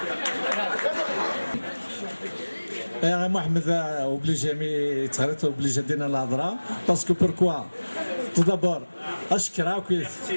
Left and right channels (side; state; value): both; inverted; correlation -1.00